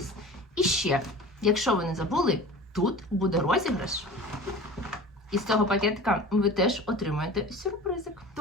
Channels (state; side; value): normal; both; correlation 0.38